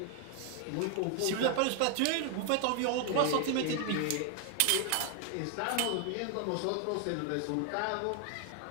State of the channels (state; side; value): different; both; correlation 0.00